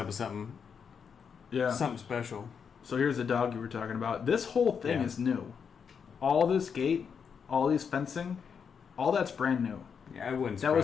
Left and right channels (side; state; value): right; quieter; 6.6 dB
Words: with something. Yeah. Something special. So here's the dog you were talking about. This whole thing is new. All this gate, all these fencing, all that's brand new. Yeah, it wouldn't